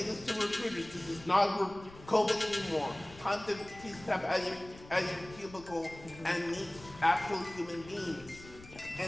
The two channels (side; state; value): left; noise; rumble, 19 dB below the sound